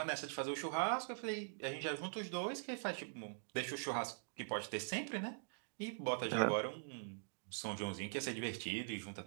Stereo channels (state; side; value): silent; left; digital silence